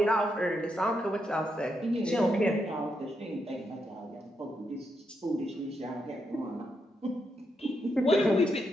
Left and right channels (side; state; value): both; normal; correlation 0.82